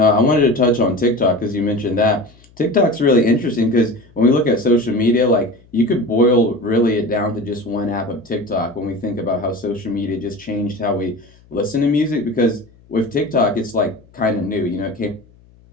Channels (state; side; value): noise; left; hum, 28 dB below the sound